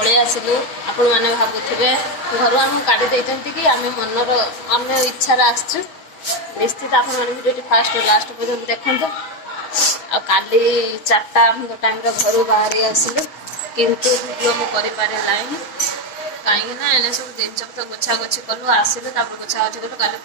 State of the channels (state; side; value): late; right; 6.1 ms